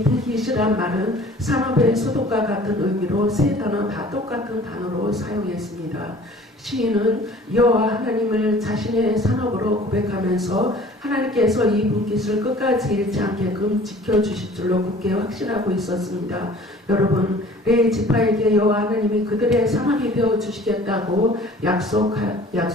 분깃이란 말은 산업의 소득과 같은 의미로 세 단어 다 똑같은 단어로 사용했습니다. 시인은 여호와 하나님을 자신의 산업으로 고백하면서 하나님께서 이 분깃을 끝까지 잃지 않게끔 지켜주실 줄로 굳게 확신하고 있었습니다. 여러분, 레위 지파에게 여호와 하나님이 그들의 산업이 되어 주시겠다고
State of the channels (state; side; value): normal; both; correlation 0.49